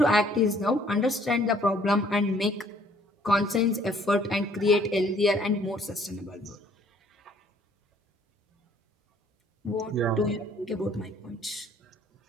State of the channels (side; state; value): both; normal; correlation 0.60